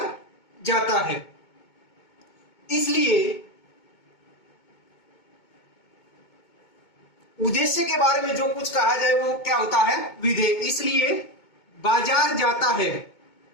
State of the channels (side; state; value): right; late; 2.2 ms